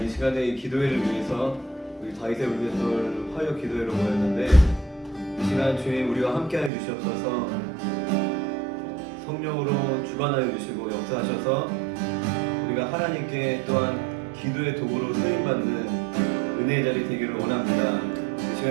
시간에 이 기도회를 위해서 우리 다윗의 울음소리 화요 기도회로 모였는데 이 시간 주님 우리와 함께하여 주시옵소서. 성령으로 주관하여 주시고 역사하셔서 우리가 하나님께 또한 기도의 도구로 쓰임받는 은혜의 자리 되기를 원합니다. 이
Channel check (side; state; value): left; drops out; at 6.7 s